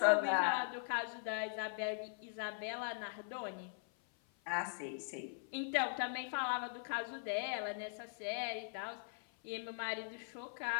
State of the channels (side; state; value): right; silent; 50 dB below the other